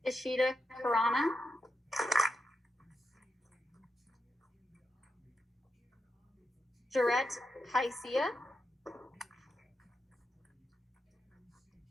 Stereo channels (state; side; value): normal; both; correlation 0.86